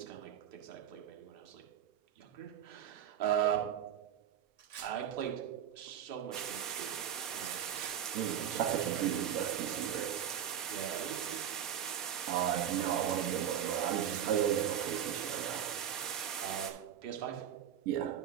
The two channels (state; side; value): quieter; left; 9.6 dB